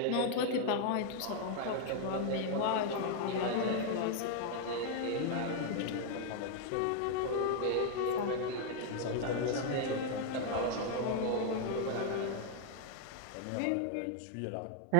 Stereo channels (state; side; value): different; both; correlation 0.00